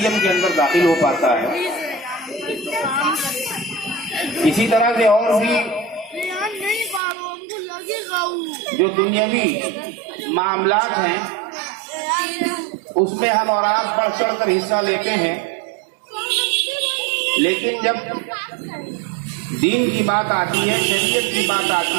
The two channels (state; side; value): drops out; left; at 7.0 s